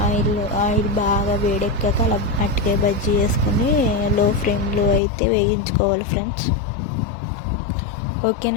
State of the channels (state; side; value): drops out; right; at 5.0 s